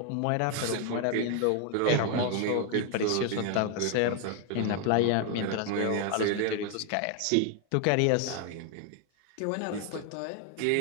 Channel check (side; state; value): both; different; correlation 0.01